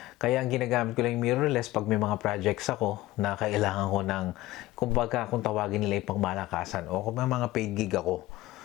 Kaya ang ginagamit ko lang yung mirrorless pag may mga projects ako na kailangan ko ng, kumbaga kung tawagin nila yung pangmalakasan o kung may mga paid gig ako.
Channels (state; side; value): quieter; right; 17.1 dB